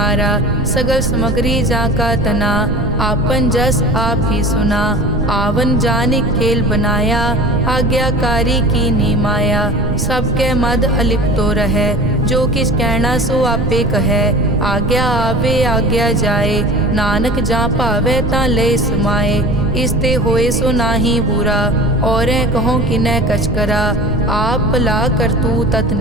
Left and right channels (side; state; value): right; noise; rumble, 3 dB below the sound